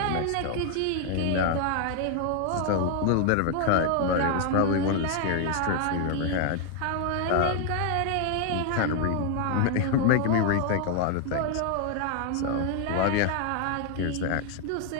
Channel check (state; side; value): different; both; correlation 0.01